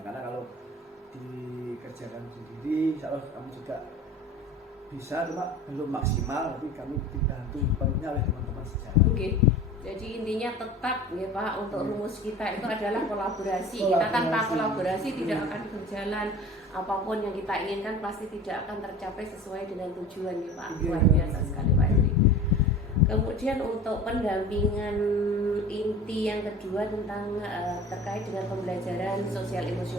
kalau dikerjakan sendiri, insya Allah kami juga bisa, cuma belum maksimal, tapi kami dibantu penuhnya oleh teman-teman sejawat. Oke. Jadi intinya tetap ya Pak, untuk rumus kita itu adalah kolaborasi. Kita tanpa kolaborasi tidak akan berjalan, apapun yang kita inginkan pasti tidak akan tercapai sesuai dengan tujuan ya Pak. Luar biasa sekali Pak Henry. Kemudian untuk pendampingan inti yang kedua tentang terkait dengan pembelajaran sosial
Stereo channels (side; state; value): both; normal; correlation 0.38